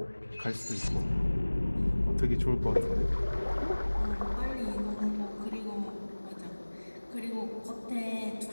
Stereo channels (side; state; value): both; inverted; correlation -1.00